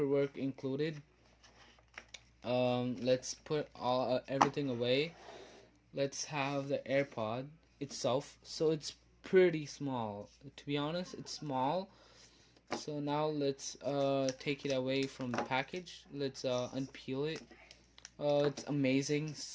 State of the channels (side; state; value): both; identical; correlation 1.00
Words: included. Let's put everything away. Let's have the AirPod itself. So it's pretty small. To be honest, it's small. So now let's take it away from the package. Let's unpeel it. It's amazing,